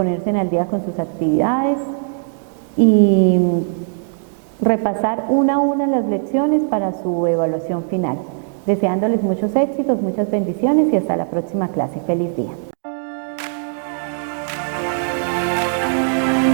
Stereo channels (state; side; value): silent; left; digital silence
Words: al día con sus actividades y repasar una a una las lecciones para su evaluación final. Deseándoles muchos éxitos, muchas bendiciones y hasta la próxima clase. Feliz día.